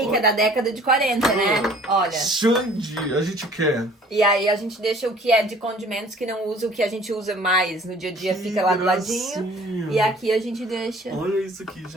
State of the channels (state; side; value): normal; both; correlation 0.52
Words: que é da década de 40, né? Olha. Xande, a gente quer. E aí a gente deixa o que é de condimentos que não usa, o que a gente usa mais no dia a dia Que fica lá do gracinha. ladinho. E aqui a gente deixa. Olha isso aqui,